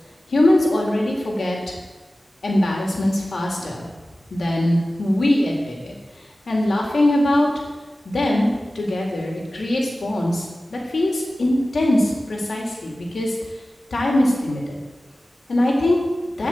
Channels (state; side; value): normal; both; correlation 0.96